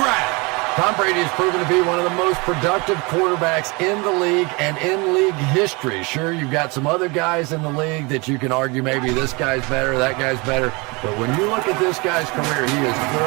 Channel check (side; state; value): left; quieter; 27.5 dB